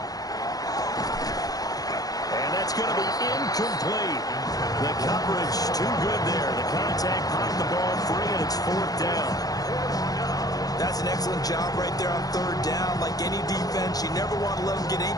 And that's going to be incomplete. The coverage too good there. The contact popped the ball free, and it's 4th down. That's an excellent job right there on 3rd down. Like any defense, you never want to let them get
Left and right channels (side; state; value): right; late; 0.18 ms